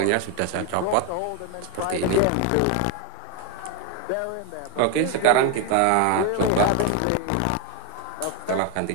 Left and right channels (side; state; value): both; different; correlation 0.01